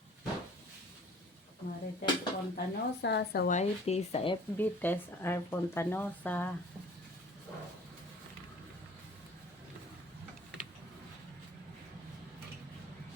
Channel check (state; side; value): normal; both; correlation 0.49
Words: Marites Fontanosa sa YT, sa FB, Tess R. Fontanosa.